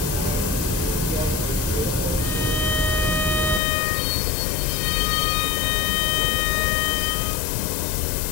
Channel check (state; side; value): drops out; right; at 3.6 s